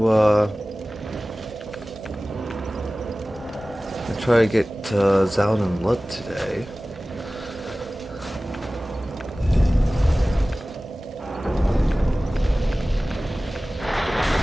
get Zallen and Blood today.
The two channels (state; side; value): normal; both; correlation 0.97